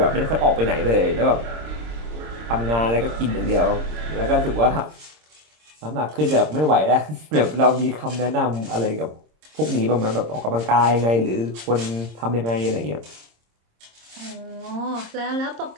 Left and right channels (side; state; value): left; late; 26 ms